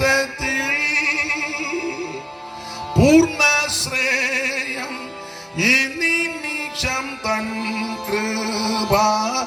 പൂർണ്ണശ്രേയം ഈ നിമിഷം തൻ കൃപ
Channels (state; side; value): identical; both; correlation 1.00